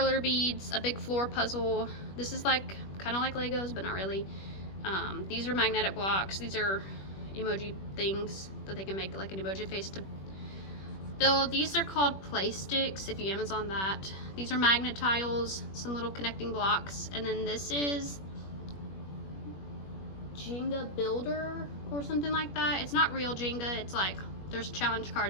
beads, a big floor puzzle. This is like kind of like Legos, but not really. These are magnetic blocks. These are emoji things that they can make like an emoji face to build. These are called play sticks if you Amazon that. These are magnet tiles, some little connecting blocks, and then this is Jenga builder or something like that. It's not real Jenga. It's like there's challenge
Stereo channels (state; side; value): late; right; 21 ms